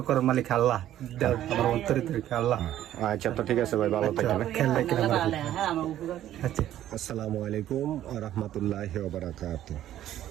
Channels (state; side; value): quieter; left; 12.3 dB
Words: করার মালিক আল্লাহ, আমার অন্তরে থেকে আল্লাহ। আচ্ছা, তো ঠিক আছে ভাই, ভালো থাকেন। আচ্ছা, আসসালামু আলাইকুম ওয়া রাহমাতুল্লাহি ওয়া বারাকাতুহু।